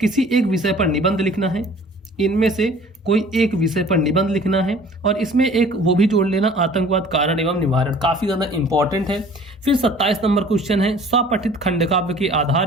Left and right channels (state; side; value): normal; both; correlation 0.49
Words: किसी एक विषय पर निबंध लिखना है। इनमें से कोई एक विषय पर निबंध लिखना है और इसमें एक वो भी जोड़ लेना, आतंकवाद कारण एवं निवारण, काफी ज्यादा इंपॉर्टेंट है। फिर 27 नंबर क्वेश्चन है, स्वपठित खंडकाव्य के